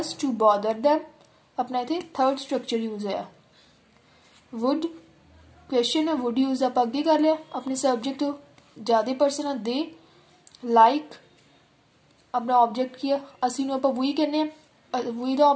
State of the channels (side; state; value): both; identical; correlation 1.00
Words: to bother them अपना इतने थर्ड स्ट्रक्चर यूज है। वुड क्वेश्चन है वुड यूज आप अगे कर लिया अपने सब्जेक्ट ज़्यादा पर्सन है दे लाइक अपना ऑब्जेक्ट की असी आप वही कहने वही का